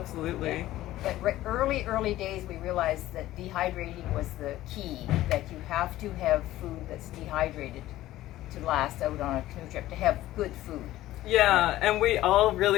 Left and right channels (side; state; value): right; quieter; 15.2 dB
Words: Yeah. But early days, we realized that dehydrating was the key, that you have to have food that's dehydrated to last out on a canoe trip, to have good food. Yeah, and we all